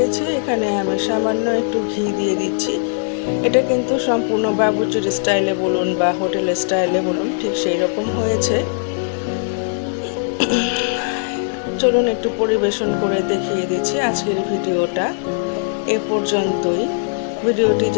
এখানে আমি সামান্য একটু ঘি দিয়ে দিচ্ছি। এটা কিন্তু সম্পূর্ণ বাবুর্চির স্টাইলে বলুন বা হোটেলের স্টাইলে বলুন, ঠিক সেই রকম হয়েছে। চলুন একটু পরিবেশন করে দেখিয়ে দিচ্ছি। আজকের ভিডিওটা এ পর্যন্তই। ভিডিওটি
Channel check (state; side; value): silent; right; 60 dB below the other